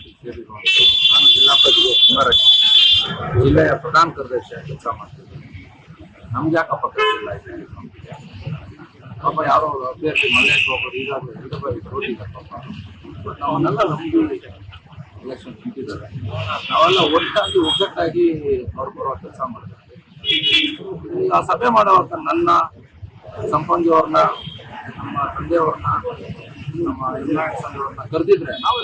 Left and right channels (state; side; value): identical; both; correlation 1.00